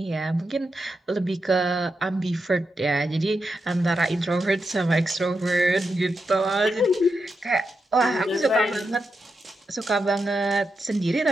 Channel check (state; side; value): normal; both; correlation 0.87